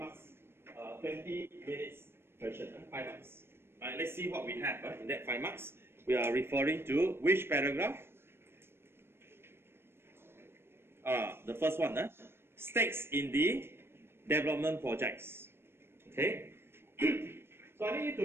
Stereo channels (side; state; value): left; late; 0.12 ms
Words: 20 minutes question. 5 marks. Alright, let's see what we have in that 5 marks. we are referring to which paragraph? The first one, stakes in the development projects. Okay. So I need you